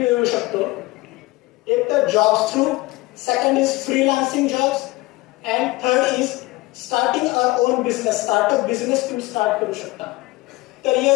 शकतो. एक तर jobs through, second is freelancing jobs and third is starting our own business. Startup business तुम्ही स्टार्ट करू शकता. तर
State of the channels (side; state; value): right; quieter; 20.9 dB